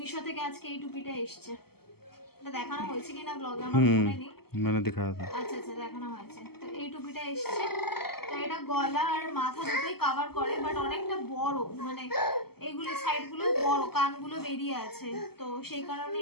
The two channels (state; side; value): late; right; 0.96 ms